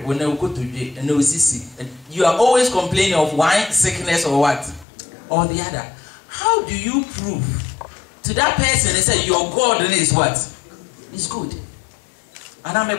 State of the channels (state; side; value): drops out; right; at 4.9 s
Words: wo na ukotodwe and na osisi, you are always complaining of one sickness or what or the other. How do you prove to that person and say your God is what? Is good. And